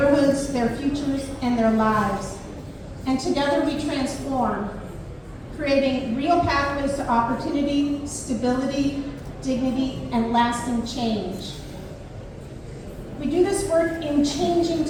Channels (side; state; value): both; identical; correlation 1.00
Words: their futures, and their lives. And together we transform, creating real pathways to opportunity, stability, dignity, and lasting change. We do this work in changing